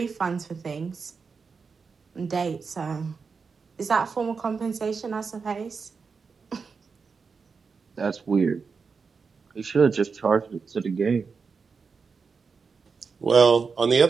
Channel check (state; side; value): quieter; left; 5.2 dB